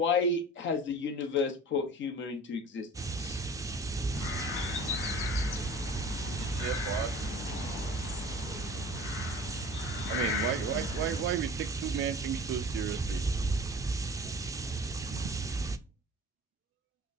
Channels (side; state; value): both; normal; correlation 0.42